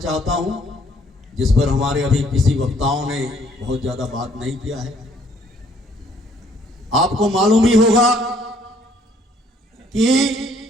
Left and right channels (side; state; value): both; normal; correlation 0.63